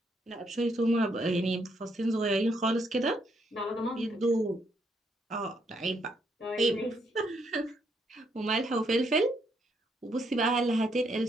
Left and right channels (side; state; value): both; normal; correlation 0.74